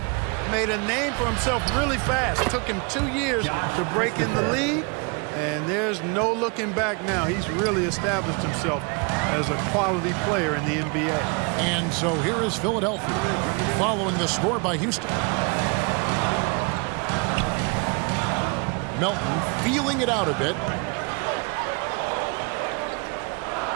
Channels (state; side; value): quieter; left; 32.6 dB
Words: made a name for himself really fast. It took him 2 years to break in the league, and there's no looking back now. He's really established himself as a quality player in the NBA. And so here is Philadelphia following the score by Houston. Melton feeling it out a bit.